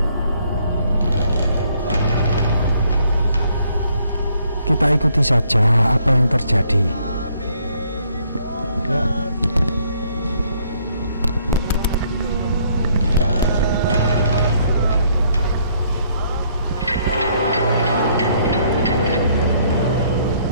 Kita ikuti saja apa yang terjadi ya.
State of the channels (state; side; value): inverted; both; correlation -0.66